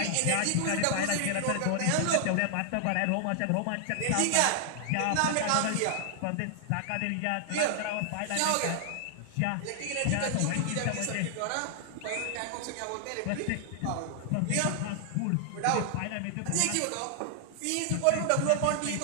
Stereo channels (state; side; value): different; both; correlation 0.00